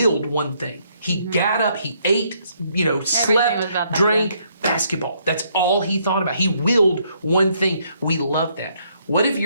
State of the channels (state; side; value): inverted; both; correlation -0.70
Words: one thing. He got up, he ate, was about slept, that, drank, basketball. That's all he thought about. He willed one thing. We love that. What if